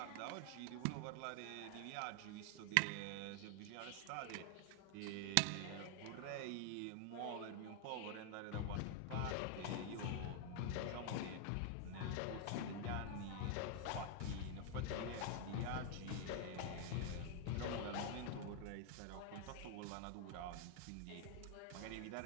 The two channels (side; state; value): both; different; correlation 0.00